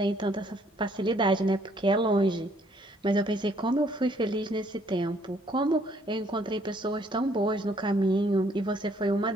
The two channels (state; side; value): normal; both; correlation 0.65